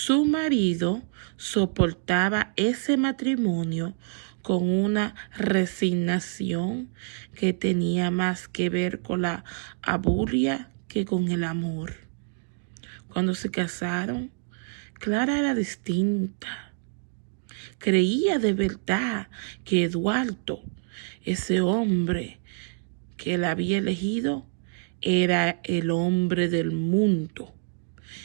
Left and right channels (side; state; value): left; silent; digital silence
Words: marido soportaba ese matrimonio con una resignación que tenía más que ver con la abulia que con el amor. Cuando se casaron, Clara era distinta. Creía de verdad que Eduardo, ese hombre que la había elegido, era el hombre del mundo.